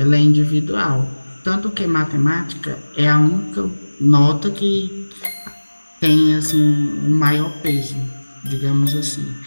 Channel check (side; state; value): both; inverted; correlation -1.00